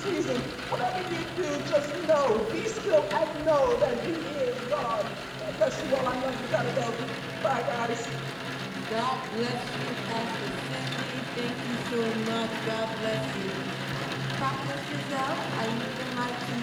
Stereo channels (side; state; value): both; identical; correlation 1.00